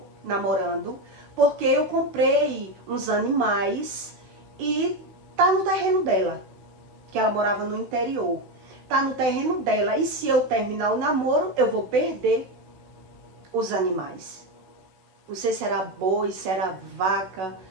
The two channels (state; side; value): late; left; 16 ms